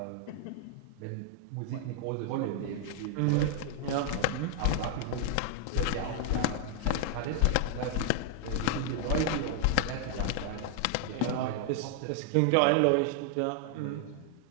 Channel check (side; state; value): both; different; correlation 0.00